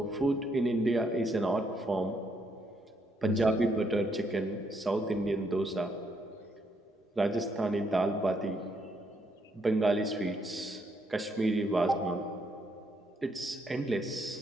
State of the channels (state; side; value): normal; both; correlation 0.74